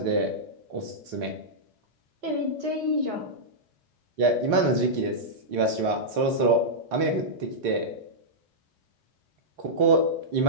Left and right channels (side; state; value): left; late; 3.9 ms